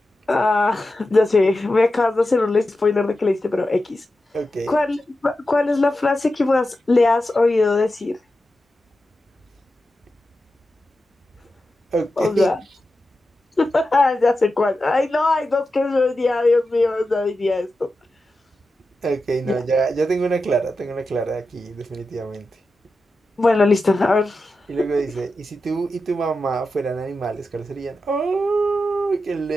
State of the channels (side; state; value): both; normal; correlation 0.91